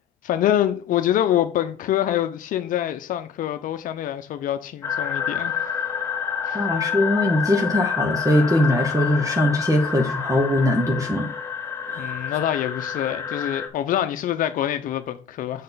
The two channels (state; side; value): quieter; right; 4.4 dB